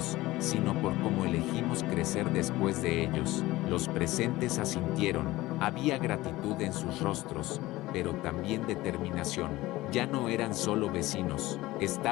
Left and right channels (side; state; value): right; quieter; 18.2 dB